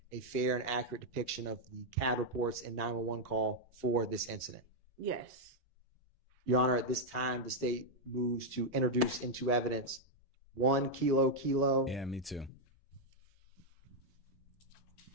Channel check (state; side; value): normal; both; correlation -0.02